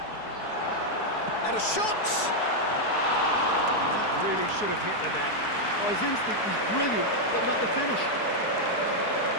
And a shot! That really should have hit the net. Oh, his instinct was brilliant, but not the finish.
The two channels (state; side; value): late; right; 4.7 ms